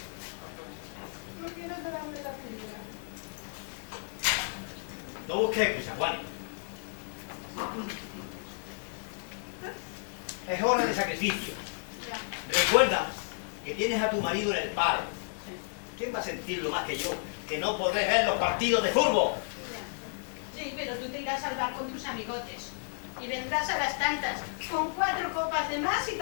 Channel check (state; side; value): silent; right; 56 dB below the other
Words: No busques excusas, Juan. Es hora de sacrificio. Ya. Recuerda que tienes a tu marido en el paro. ¿Quién va a sentirlo más que yo? Que no podés ver los partidos de fútbol. Sí, pero tú te irás al bar con tus amigotes y vendrás a las tantas con 4 copas de más y